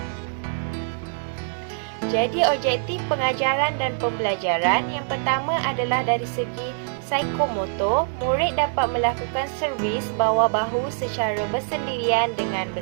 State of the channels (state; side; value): silent; left; digital silence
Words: Jadi objektif pengajaran dan pembelajaran yang pertama adalah dari segi psikomotor, murid dapat melakukan servis bawah bahu secara bersendirian dengan